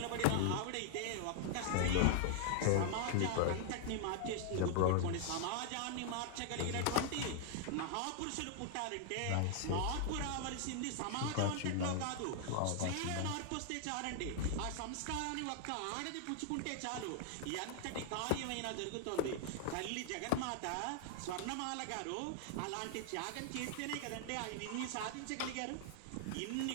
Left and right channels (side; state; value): both; different; correlation 0.00